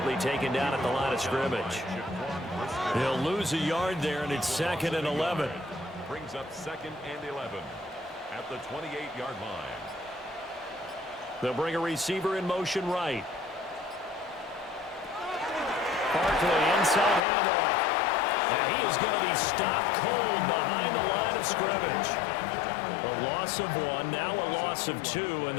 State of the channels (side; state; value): right; drops out; at 17.2 s